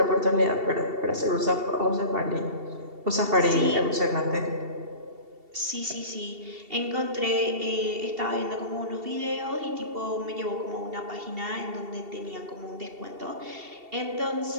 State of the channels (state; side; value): late; left; 2.7 ms